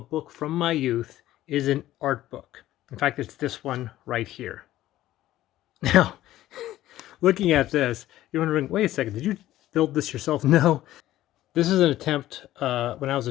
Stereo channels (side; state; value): right; quieter; 14.4 dB